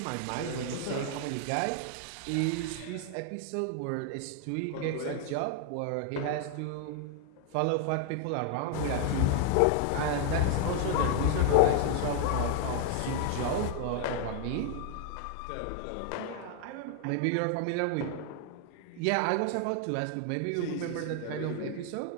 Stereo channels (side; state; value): both; different; correlation 0.00